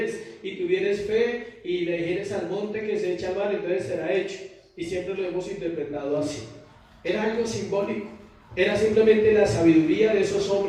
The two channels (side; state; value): both; identical; correlation 1.00